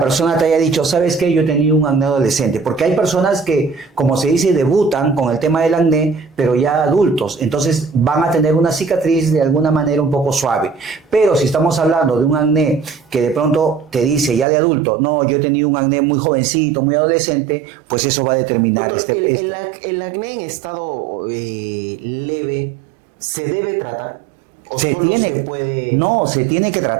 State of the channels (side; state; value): left; drops out; at 14.5 s